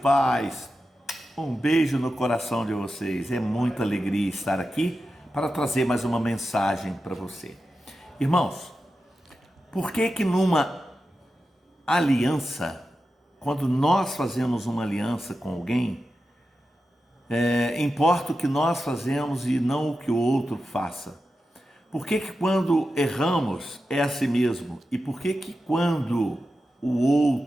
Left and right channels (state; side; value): normal; both; correlation 0.91